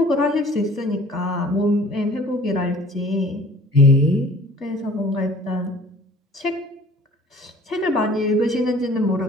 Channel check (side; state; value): both; normal; correlation 0.49